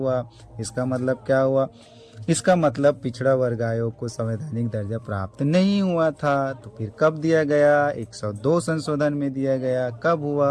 इसका मतलब क्या हुआ? इसका मतलब पिछड़ा वर्ग आयोग को संवैधानिक दर्जा प्राप्त नहीं हुआ था। तो फिर कब दिया गया? 102 संशोधन में दिया गया। कब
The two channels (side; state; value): both; identical; correlation 1.00